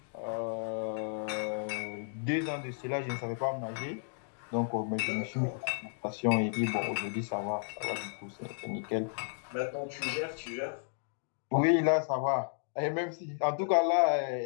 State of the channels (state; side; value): silent; right; digital silence